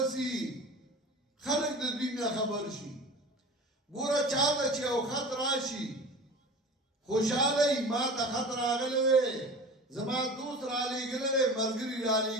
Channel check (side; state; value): both; normal; correlation 0.36